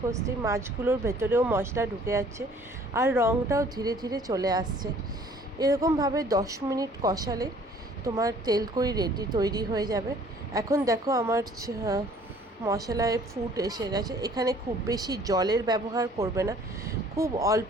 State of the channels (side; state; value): both; normal; correlation 0.55